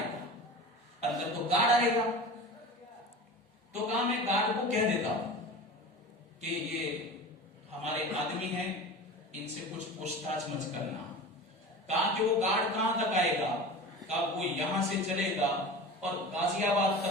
گا؟ اندر تو گارڈ آئے گا۔ تو کہا میں گارڈ کو کہہ دیتا ہوں کہ یہ ہمارے آدمی ہیں، ان سے کچھ پوچھ تاچھ مت کرنا۔ کہا کہ وہ گارڈ کہاں تک آئے گا؟ کہا وہ یہاں سے چلے گا اور غازی آباد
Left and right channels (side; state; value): both; normal; correlation 0.34